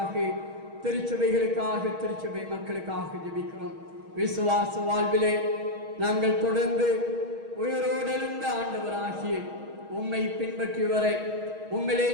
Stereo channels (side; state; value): left; late; 6.3 ms